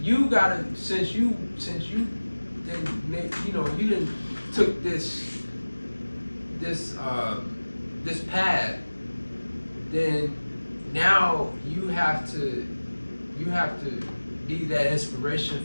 You gotta, since you didn't, you know, you didn't took this path, then now you have to be that inspiration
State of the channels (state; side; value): inverted; both; correlation -1.00